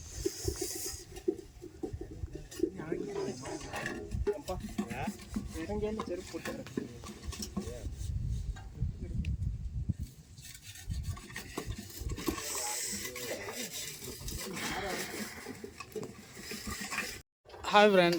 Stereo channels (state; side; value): identical; both; correlation 1.00